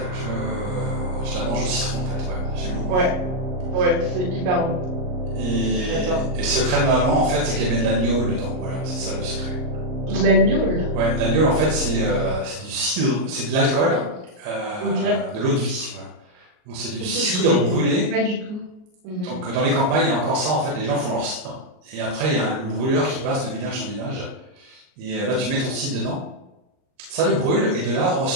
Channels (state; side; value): late; left; 38 ms